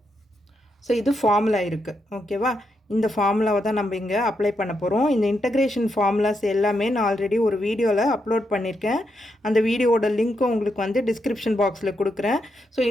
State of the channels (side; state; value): both; normal; correlation 0.82